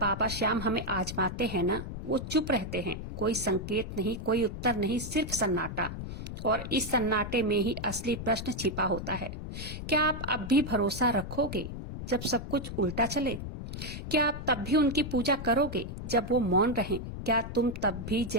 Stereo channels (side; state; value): left; noise; rumble, 7 dB below the sound